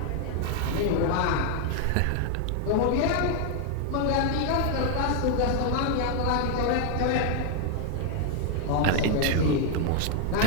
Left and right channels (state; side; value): different; both; correlation 0.00